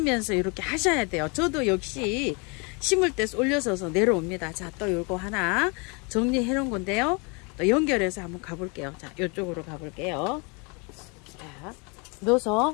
이렇게 하셔야 돼요. 저도 역시 심을 때 쏠려서 내려옵니다. 자, 또 요거 하나 정리해 놓은 건데요. 또 연결해서 한번 가볼게요. 자, 이쪽으로 가볼게요. 자,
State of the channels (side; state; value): right; quieter; 31.7 dB